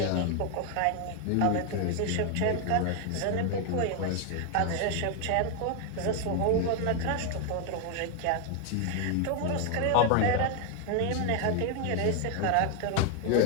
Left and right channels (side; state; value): both; different; correlation 0.01